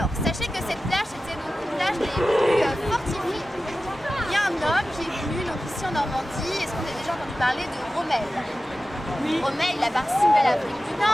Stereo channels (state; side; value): normal; both; correlation 0.95